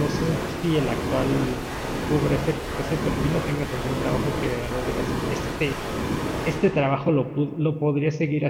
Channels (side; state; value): both; identical; correlation 1.00